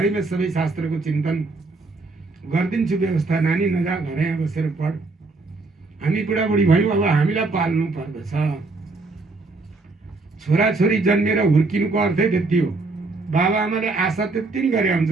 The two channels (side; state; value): left; quieter; 3.6 dB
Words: सबै शास्त्रको चिन्तन गरिदिन्छु व्यवस्था। नानी नजा, घरै बसेर पढ। हामी बुढाबुढी भयौँ, अब हामीलाई पाल्नु पर्दछ। छोराछोरी जन्मेर हुर्किनुको अर्थै त्यति हो। बाबा आमाले आशा त्यति नै गरे हुन्छ,